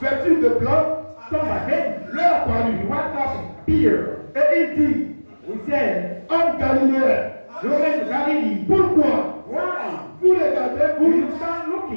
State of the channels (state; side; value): inverted; both; correlation -1.00